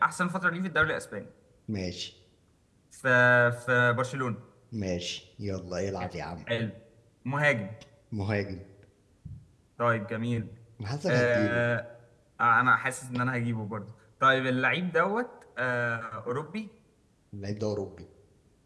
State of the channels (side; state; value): both; identical; correlation 1.00